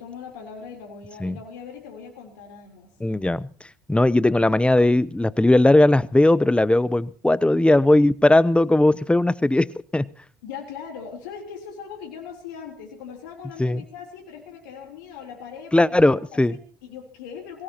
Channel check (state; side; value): normal; both; correlation 0.97